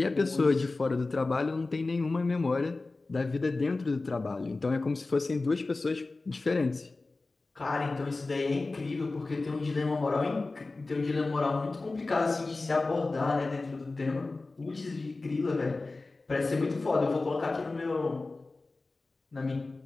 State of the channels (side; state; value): right; quieter; 3.4 dB